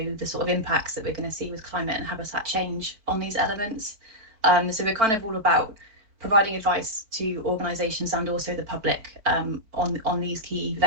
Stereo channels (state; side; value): late; left; 4.5 ms